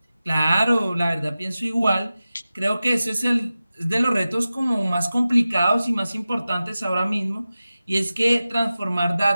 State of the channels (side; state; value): both; inverted; correlation -0.95